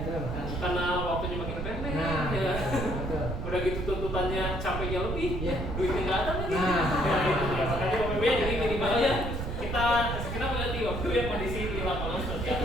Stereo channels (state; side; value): noise; right; rumble, 4 dB below the sound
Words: Karena waktunya makin pendek, ya. Udah gitu tuntutannya capeknya lebih, duitnya nggak ada lagi. Ya itu ya, makanya Bapak Ibu jadi minimal ya kita mengerti waktu ya kondisi di lapangan seperti